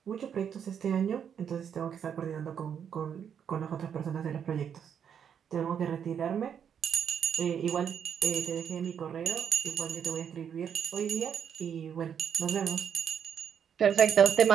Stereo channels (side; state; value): left; quieter; 8.0 dB